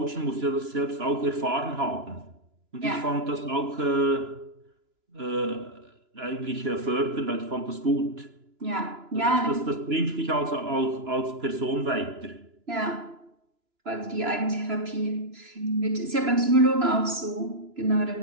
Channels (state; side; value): late; left; 2.9 ms